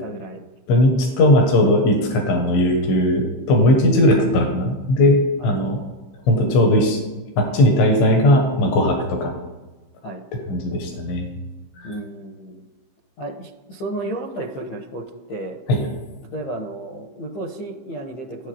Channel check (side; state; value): right; late; 15 ms